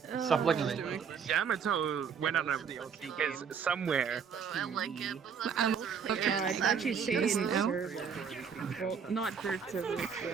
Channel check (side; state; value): left; quieter; 6.7 dB